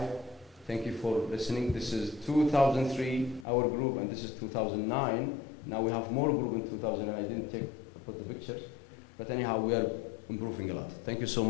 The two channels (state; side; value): drops out; right; at 3.5 s